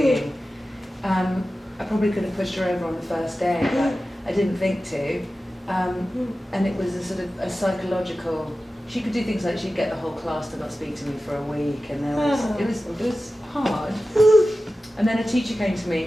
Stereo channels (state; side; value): normal; both; correlation 0.94